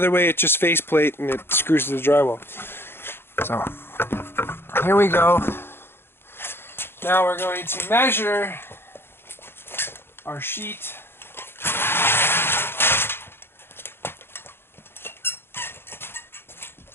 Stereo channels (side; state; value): right; late; 0.11 ms